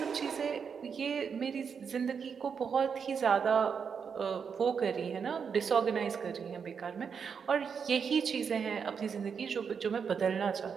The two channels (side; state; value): left; quieter; 6.5 dB